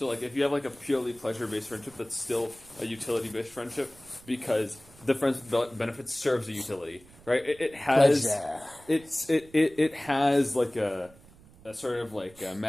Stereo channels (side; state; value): right; noise; rumble, 24 dB below the sound